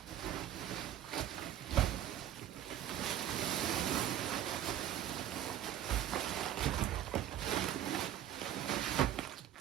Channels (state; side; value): quieter; left; 11.2 dB